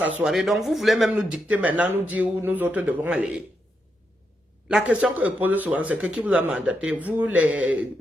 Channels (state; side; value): normal; both; correlation 0.83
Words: soirée, donc vous voulez même nous dicter maintenant, nous dire où nous autres devons aller. La question que je pose souvent, c'est que qui vous a mandaté? Vous,